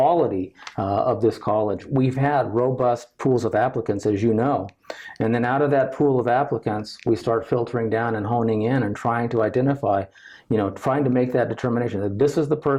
of this college, we've had robust pools of applicants, as you know. And then out of that pool of applicants, we start filtering down and honing in and trying to identify, trying to make that determination that this is the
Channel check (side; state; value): both; identical; correlation 1.00